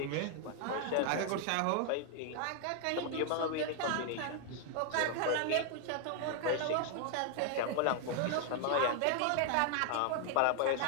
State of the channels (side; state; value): both; different; correlation 0.00